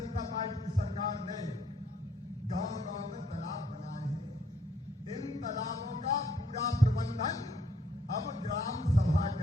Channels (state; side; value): normal; both; correlation 0.67